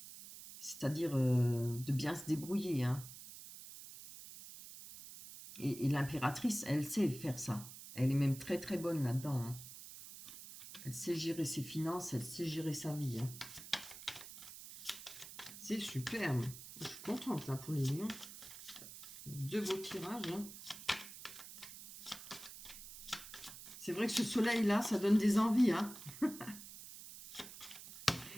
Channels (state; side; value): noise; right; hiss, 13 dB below the sound